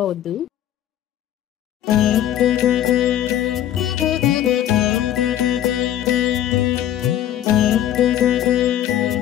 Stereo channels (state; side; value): quieter; right; 11.6 dB